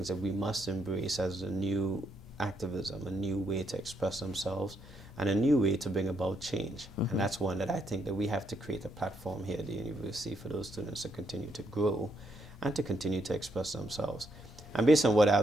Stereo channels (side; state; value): both; normal; correlation 0.76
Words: that we must embrace as a new activism, a new way to express themselves, and a new way to bring about change. And that's one that I think that we have to create a platform here at the university for those students to continue to grow and to continue to express themselves. And based on what